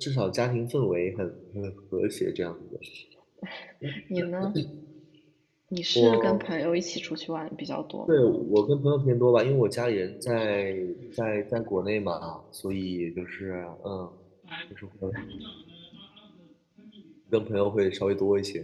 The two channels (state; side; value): identical; both; correlation 1.00